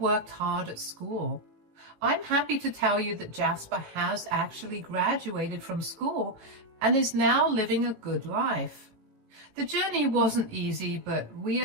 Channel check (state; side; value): late; left; 18 ms